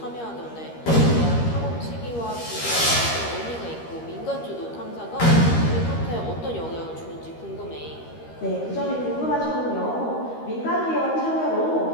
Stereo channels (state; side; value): late; right; 13 ms